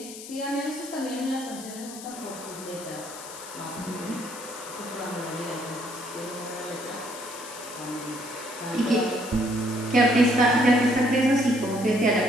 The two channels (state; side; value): noise; left; hiss, 13 dB below the sound